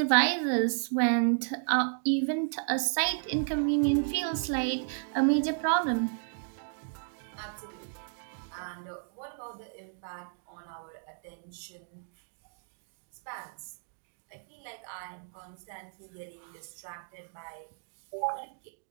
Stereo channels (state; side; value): silent; left; digital silence